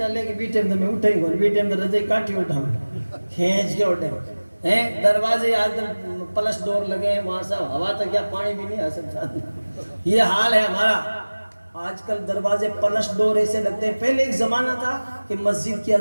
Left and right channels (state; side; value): inverted; both; correlation -1.00